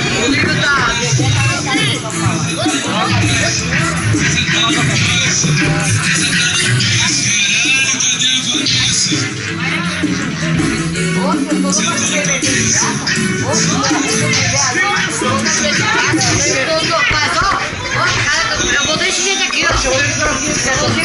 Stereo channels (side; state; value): both; identical; correlation 1.00